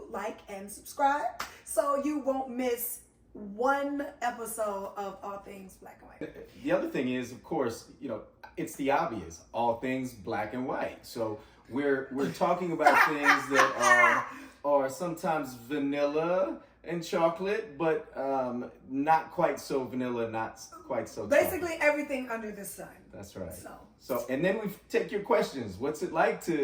like and subscribe so you won't miss one episode of All Things Black and White. The other thing is, of course, it's the obvious. All things black and white. So we're talking about things that are sometimes vanilla and chocolate, but not quite so vanilla, not quite so basically chocolate. Everything under the sun. That's right. So and then we take your questions. What's it like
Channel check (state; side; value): identical; both; correlation 1.00